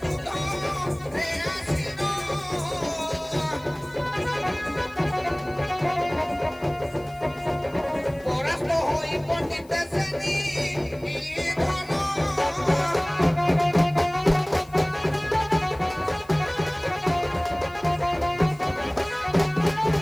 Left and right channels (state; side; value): noise; left; hiss, 27 dB below the sound